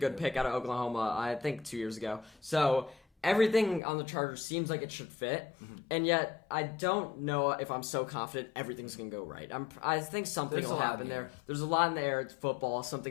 pick out of Oklahoma, I think 2 years ago. So everything on the Chargers seems like it should fit, and yet I don't know if I'm so confident everything's going to go right. I think something will happen there. There's a lot in the air. It's football.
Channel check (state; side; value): drops out; right; at 3.8 s